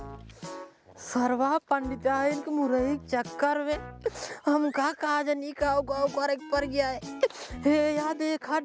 सरवा पंडिताइन के मुरई के चक्कर में हमका काजनी का गाँव करे पर गया है। हे या देखा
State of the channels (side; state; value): both; identical; correlation 1.00